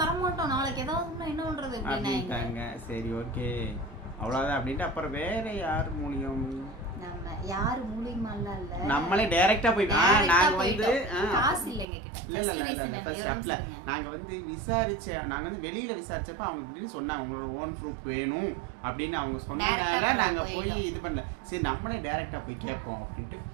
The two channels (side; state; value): left; drops out; at 11.9 s